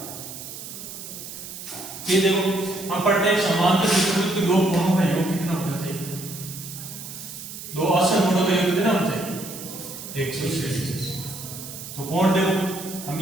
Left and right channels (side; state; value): right; noise; hiss, 11 dB below the sound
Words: ये देखो हम पढ़ते हैं समांतर चतुर्भुज के दो कोणों का योग कितना होना चाहिए, दो असमकोणों का योग कितना होना चाहिए, 180। तो कोण देखो हम